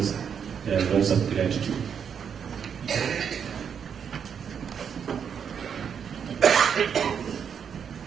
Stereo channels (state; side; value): quieter; left; 7.4 dB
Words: their words of gratitude.